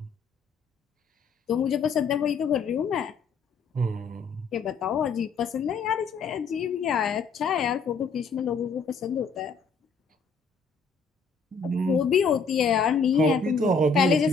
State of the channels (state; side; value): quieter; right; 4.7 dB